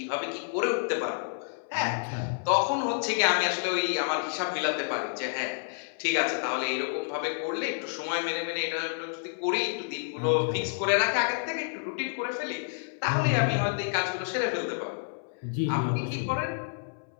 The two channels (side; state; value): right; silent; 58 dB below the other